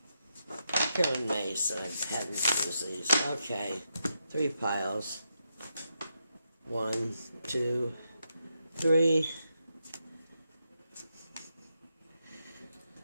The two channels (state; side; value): inverted; both; correlation -0.83